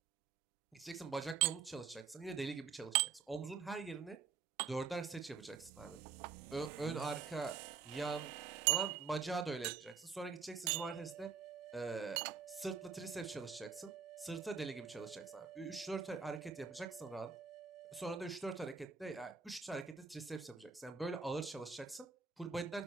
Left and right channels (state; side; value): quieter; left; 6.0 dB